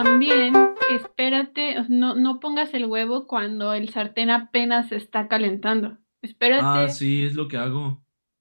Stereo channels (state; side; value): inverted; both; correlation -1.00